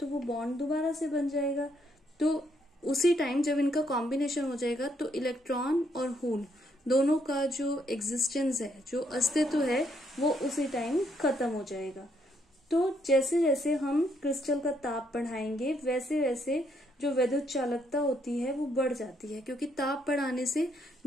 वो बॉन्ड दोबारा से बन जाएगा। तो उसी टाइम जब इनका कॉम्बिनेशन हो जाएगा तो इलेक्ट्रॉन और होल दोनों का जो एग्जिस्टेंस है, जो अस्तित्व है, वो उसी टाइम खत्म हो जाएगा। तो जैसे जैसे हम क्रिस्टल का ताप बढ़ाएंगे वैसे वैसे जो विद्युत चालकता होती है वो बढ़ जाती है, क्योंकि ताप बढ़ाने से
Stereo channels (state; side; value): normal; both; correlation 0.73